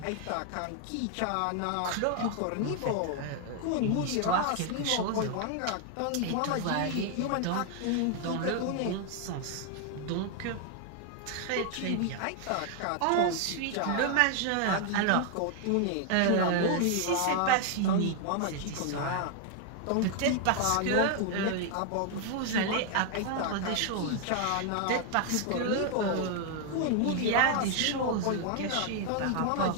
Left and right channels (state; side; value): different; both; correlation 0.00